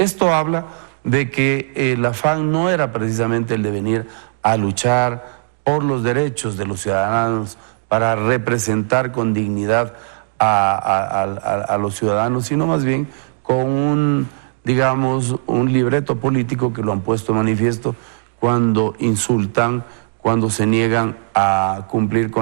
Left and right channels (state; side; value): silent; left; digital silence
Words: habla de que el afán no era precisamente el de venir a luchar por los derechos de los ciudadanos, para representar con dignidad a los ciudadanos, sino más bien con un, digamos, un libreto político que lo han puesto en manifiesto cuando insultan, cuando se niegan a cumplir